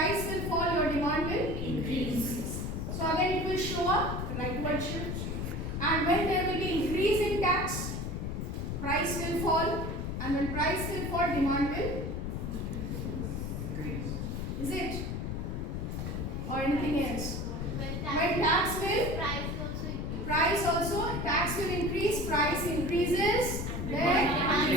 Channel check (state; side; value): noise; left; rumble, 3 dB below the sound